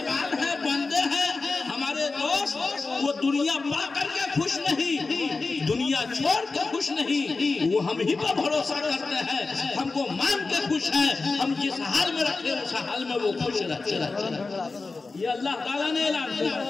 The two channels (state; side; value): quieter; right; 3.9 dB